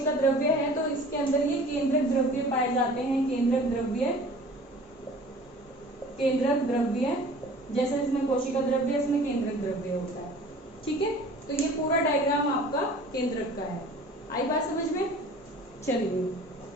द्रव्य है तो इसके अंदर ये केंद्रक द्रव्य पाए जाते हैं, केंद्रक द्रव्य, जैसे इसमें कोशिका द्रव्य, इसमें केंद्रक द्रव्य होता है। ठीक है, तो ये पूरा डायग्राम आपका केंद्रक का है। आई बात समझ में? चलिए,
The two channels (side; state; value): both; normal; correlation 0.46